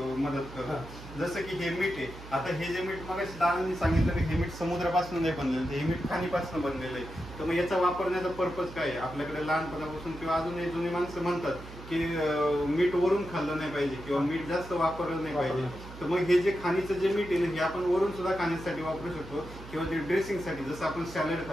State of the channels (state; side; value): noise; right; hum, 15 dB below the sound